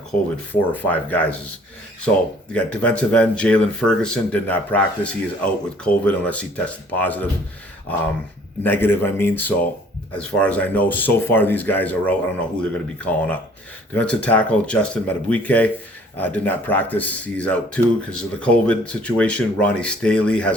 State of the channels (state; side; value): normal; both; correlation 0.57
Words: 4 or 5 guys. So you got defensive end Jalen Ferguson did not practice. He is out with COVID unless he tested positive, negative. I mean, so as far as I know, so far these guys are out. I don't know who they're going to be calling up. Defensive tackle Justin Madubuike did not practice. He's out too because of the COVID situation. Ronnie Staley